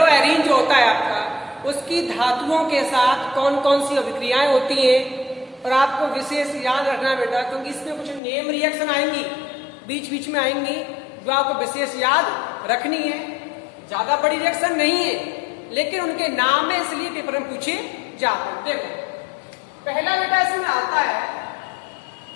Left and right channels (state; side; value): drops out; right; at 8.2 s